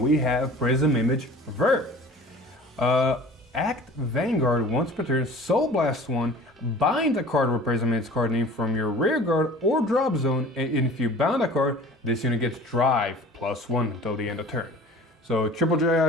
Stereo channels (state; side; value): normal; both; correlation 0.43